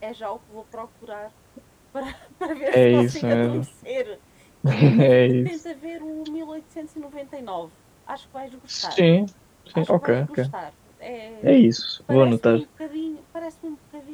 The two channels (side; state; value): both; identical; correlation 1.00